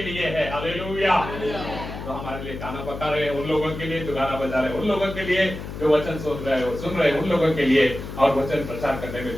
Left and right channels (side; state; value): left; noise; hum, 9 dB below the sound